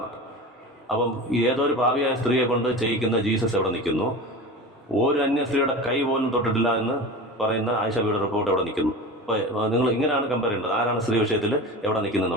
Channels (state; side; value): normal; both; correlation 0.31